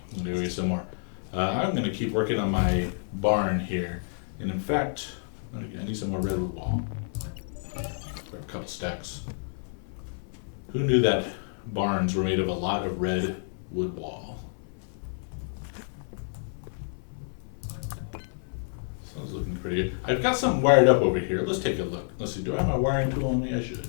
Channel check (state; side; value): silent; right; 59 dB below the other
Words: I'm going to go get some more. I'm going to keep working on my barn here. And in fact, I need some more redwood wall. Grab a couple stacks. Who knew that barns were made of a lot of redwood wall? Sounds looking pretty good. I've got something wired up over here. Let's take a look. Let's see. Do I have my wiring tool on me? I